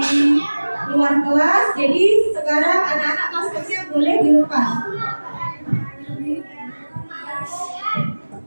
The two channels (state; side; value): inverted; both; correlation -1.00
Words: luar kelas. Jadi sekarang anak-anak maskernya boleh dilepas.